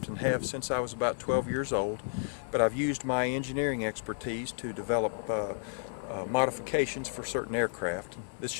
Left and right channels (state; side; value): silent; right; 56 dB below the other